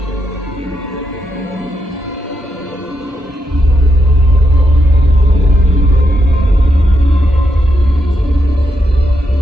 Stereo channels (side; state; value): both; normal; correlation 0.81